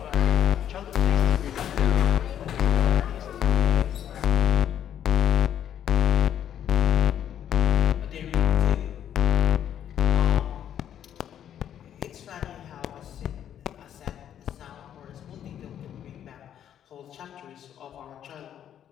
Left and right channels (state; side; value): quieter; right; 10.0 dB